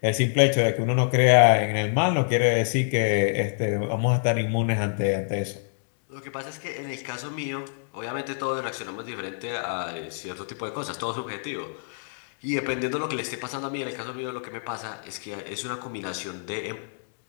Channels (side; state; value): right; silent; digital silence